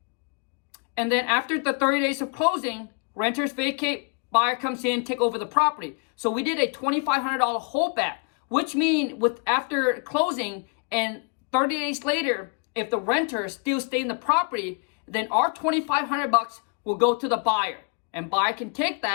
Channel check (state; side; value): quieter; right; 34.7 dB